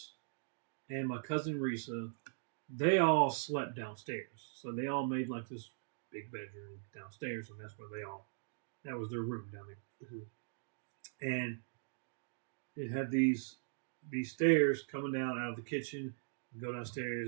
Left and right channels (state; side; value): silent; left; digital silence